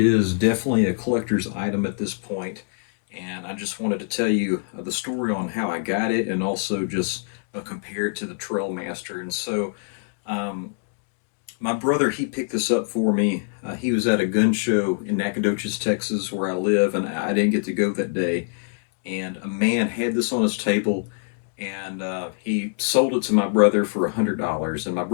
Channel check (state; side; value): silent; right; digital silence